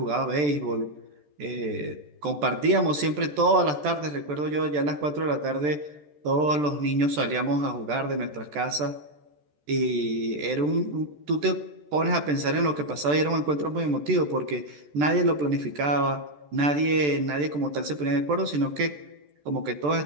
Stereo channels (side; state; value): left; late; 14 ms